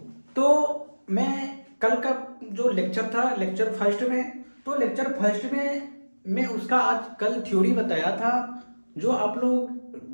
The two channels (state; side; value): inverted; both; correlation -1.00